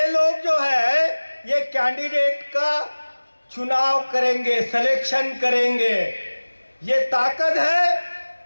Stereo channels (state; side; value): inverted; both; correlation -1.00